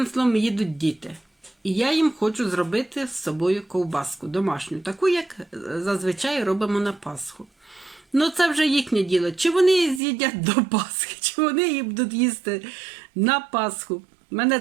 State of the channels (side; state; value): left; drops out; at 10.0 s